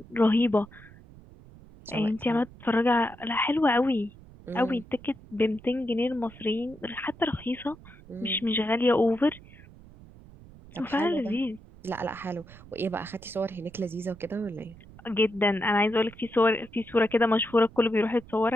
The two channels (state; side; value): noise; right; rumble, 21 dB below the sound